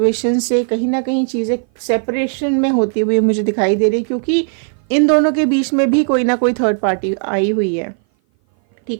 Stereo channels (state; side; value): silent; left; 58 dB below the other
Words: से कहीं ना कहीं चीज़ें सेपरेशन में होती हुई मुझे दिखाई दे रही है, क्योंकि इन दोनों के बीच में भी कोई ना कोई थर्ड पार्टी आई हुई है,